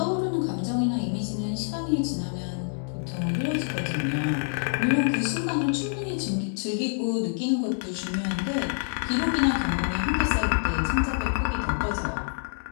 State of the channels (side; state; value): right; silent; digital silence